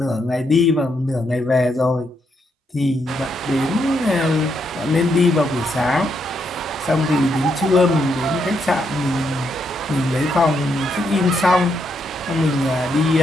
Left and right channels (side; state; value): both; normal; correlation 0.78